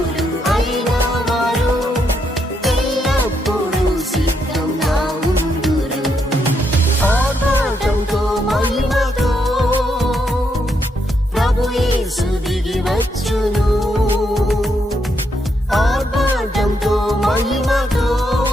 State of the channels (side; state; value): both; normal; correlation 0.78